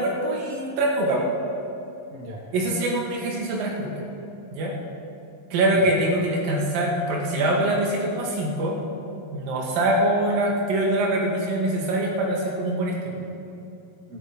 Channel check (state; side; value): late; left; 11 ms